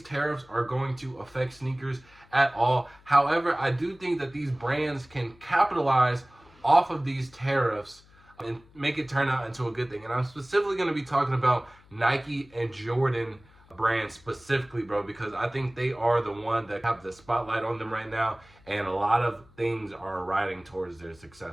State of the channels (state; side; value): noise; left; hum, 27 dB below the sound